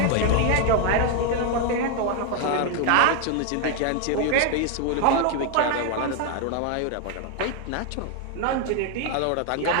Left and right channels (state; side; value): different; both; correlation 0.01